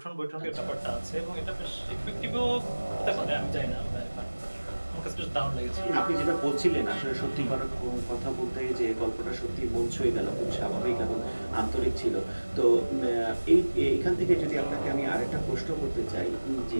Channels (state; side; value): inverted; both; correlation -1.00